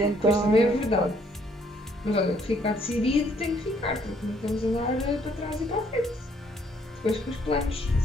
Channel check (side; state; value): both; normal; correlation 0.66